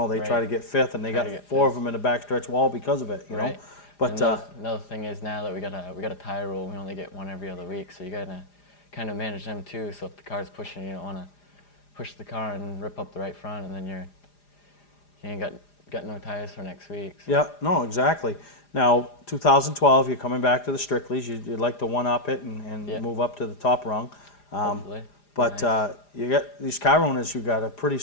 they try to get 5th, and they got 4 of them in the backstretch wall because of it, you know. But another thing is, now that we got a tire rule, we only get one every other week, so you gotta kind of manage them too. So if the car's pushing, you don't want to push the car and rip up the right front, and then you ain't got no tires for next week. So. Yeah, no, exactly. Now, 2012, you're coming back to the Strickleys. You'd like to one-up it and move up to the top rung. Hopefully. But you got these car owners who got pretty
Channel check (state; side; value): late; right; 4.9 ms